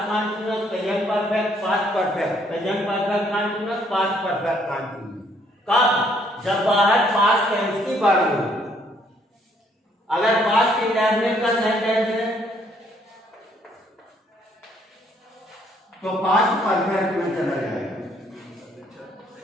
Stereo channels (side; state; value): both; normal; correlation 0.67